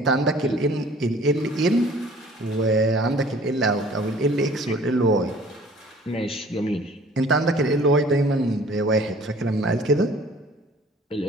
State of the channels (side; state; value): both; normal; correlation 0.51